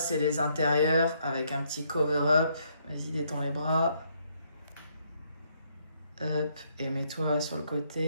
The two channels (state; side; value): inverted; both; correlation -0.72